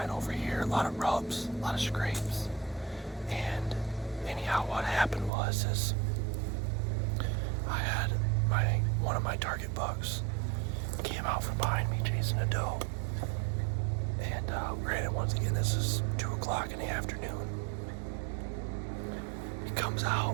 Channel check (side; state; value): left; drops out; at 5.3 s